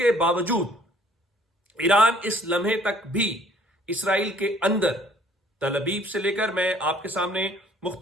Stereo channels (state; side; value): normal; both; correlation 0.58